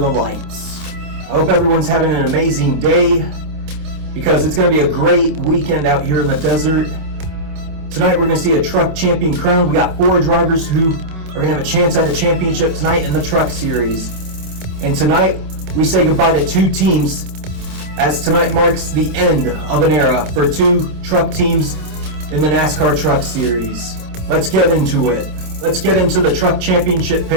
lights. I hope everyone's having an amazing day, because it's going to be a great weekend out here in the desert. Tonight we're going to see a truck champion crowned. We got 4 drivers who are going to have a chance at a championship tonight in the truck series. And tonight, we say goodbye to 2 teams, as tonight marks the end of an era for 2 truck teams in the NASCAR Truck Series. Let's get into it. Let's get into the truck championship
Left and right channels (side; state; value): left; late; 27 ms